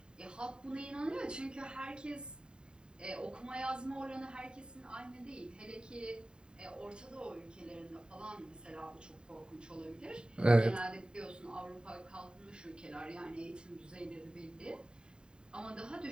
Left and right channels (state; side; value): late; left; 0.049 ms